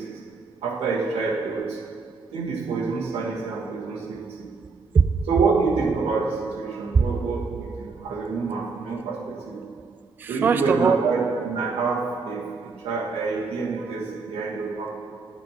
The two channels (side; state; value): left; quieter; 4.5 dB